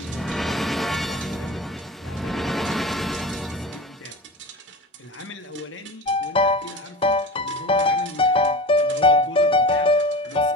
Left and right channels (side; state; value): both; normal; correlation 0.32